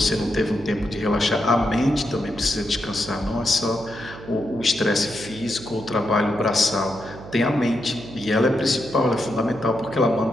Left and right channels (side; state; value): right; noise; hum, 15 dB below the sound